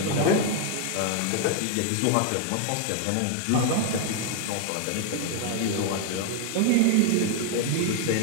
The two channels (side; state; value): both; different; correlation 0.00